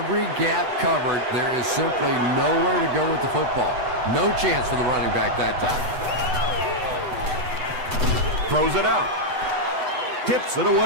gap covered. There is simply nowhere to go with the football. No chance for the running back that time. Throws it out. Tips it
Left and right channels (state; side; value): late; left; 8.0 ms